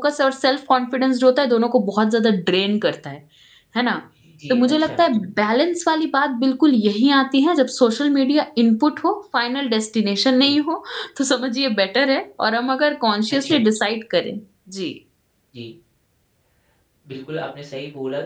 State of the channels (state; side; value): identical; both; correlation 1.00